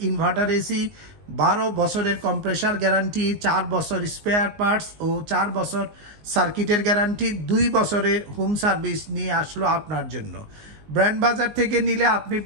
ইনভার্টার এসি। 12 বছরের কম্প্রেসার গ্যারান্টি, 4 বছর স্পেয়ার পার্টস ও 4 বছর সার্কিটের গ্যারান্টি, 2 বছরের হোম সার্ভিস নিয়ে আসলো আপনার জন্য। ব্র্যান্ড বাজার থেকে নিলে আপনি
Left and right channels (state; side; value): late; left; 19 ms